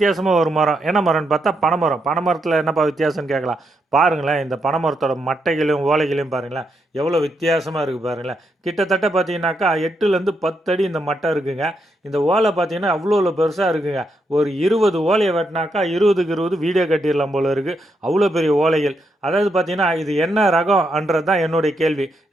ஒரு மரம். என்ன மரம்னு பார்த்தா பனைமரம். பனைமரத்தில என்னப்பா வித்தியாசம்னு கேட்கலாம். பாருங்களேன், இந்த பனைமரத்தோட மட்டைகளையும், ஓலைகளையும் பாருங்களேன். எவ்வளோ வித்தியாசமா இருக்கு பாருங்களேன். கிட்டத்தட்ட பார்த்தீங்கன்னாக்கா 8லேருந்து 10 அடி இந்த மட்டை இருக்குங்க. இந்த ஓலை பார்த்தீங்கன்னா அவ்வளோ பெருசா இருக்குங்க. ஒரு 20 ஓலைய வெட்டினாக்கா 20க்கு 20 வீடே கட்டிடலாம் போல இருக்கு. அவ்வளோ பெரிய ஓலைகள். அதாவது பார்த்தீங்கன்னா, இது என்ன ரகம்ன்றது தான் என்னுடைய கேள்வி.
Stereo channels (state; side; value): normal; both; correlation 0.80